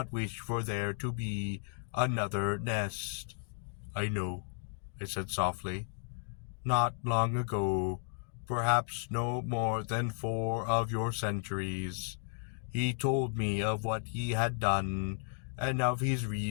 wish for there to be another nest. I know, I said softly. Not long ago, perhaps no more than 4 of your centuries, he told me of what he had done, and of his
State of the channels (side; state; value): right; silent; digital silence